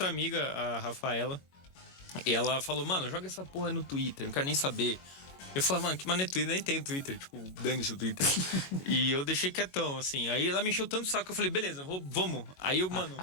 amiga, a Rafaela, e ela falou, mano, joga essa porra no Twitter, não quero nem saber. Eu falei, mano, que mané Twitter? Nem tenho Twitter, tipo, dane-se o Twitter. E eu deixei quietão, assim. Aí ela me encheu tanto o saco que eu falei, beleza, vamos. Aí eu, mano...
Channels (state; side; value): late; right; 22 ms